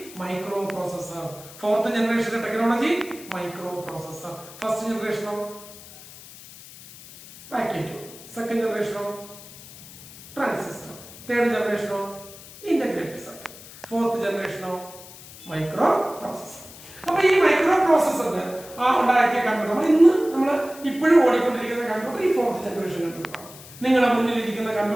മൈക്രോ പ്രോസസർ. 4th ജനറേഷന്റെ ടെക്നോളജി മൈക്രോ പ്രോസസർ. ഫസ്റ്റ് ജനറേഷനോ വാക്യൂം ട്യൂബ്, സെക്കൻഡ് ജനറേഷനോ ട്രാൻസിസ്റ്റർ, തേർഡ് ജനറേഷനോ ഇന്റഗ്രേറ്റഡ് സർക്യൂട്ട്, 4th ജനറേഷനോ മൈക്രോ പ്രോസസർ. അപ്പൊ ഈ മൈക്രോ പ്രോസസറിന് ഉണ്ടാക്കിയ കമ്പ്യൂട്ടർ നമ്മൾ ഇപ്പോഴും ഓടിക്കൊണ്ടിരിക്കുന്ന കമ്പ്യൂട്ടർ ഈ 4th ജനറേഷൻ കമ്പ്യൂട്ടറാണ്. നിങ്ങളുടെ മുന്നിലിരിക്കുന്ന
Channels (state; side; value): noise; left; hiss, 18 dB below the sound